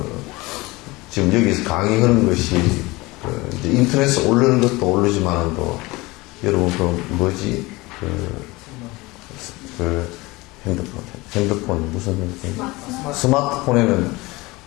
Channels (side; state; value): right; quieter; 22.1 dB